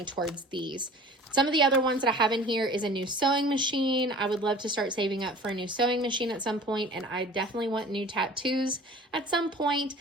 towards these. Some of the other ones that I have in here is a new sewing machine. I would love to start saving up for a new sewing machine at some point, and I definitely want new tattoos at some point,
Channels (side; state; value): both; normal; correlation 0.44